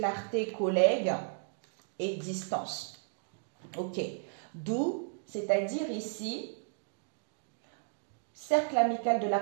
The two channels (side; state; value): left; silent; digital silence